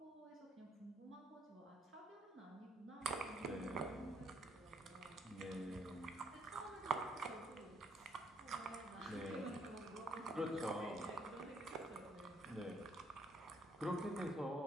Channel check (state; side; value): normal; both; correlation 0.69